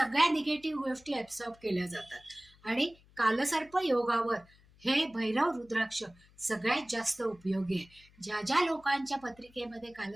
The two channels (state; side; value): noise; left; hum, 28 dB below the sound